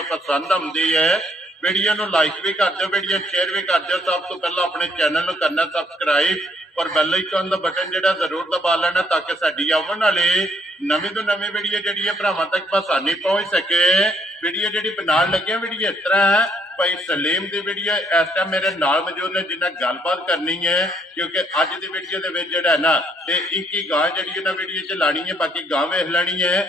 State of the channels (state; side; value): normal; both; correlation 0.69